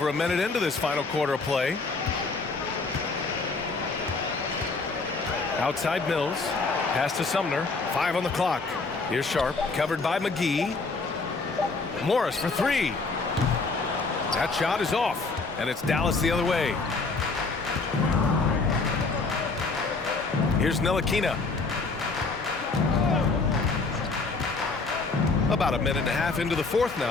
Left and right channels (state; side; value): quieter; right; 3.9 dB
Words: a minute into this final quarter of play. Outside Mills. Pass to Sumner. 5 on the clock. Here's Sharp. Covered by McGee. Morris for 3. That shot is off. And it's Dallas the other way. Here's Ntilikina. About a minute and a half into the fourth